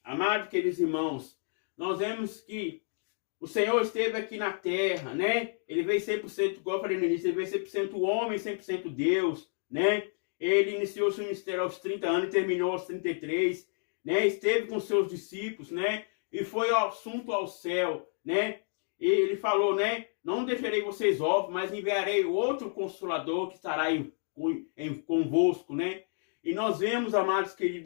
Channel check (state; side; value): silent; right; 58 dB below the other